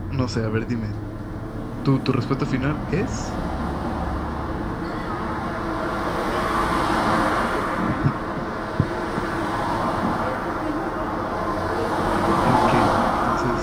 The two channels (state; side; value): identical; both; correlation 1.00